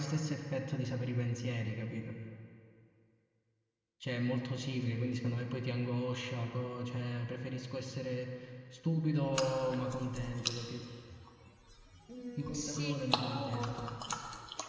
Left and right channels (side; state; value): both; identical; correlation 1.00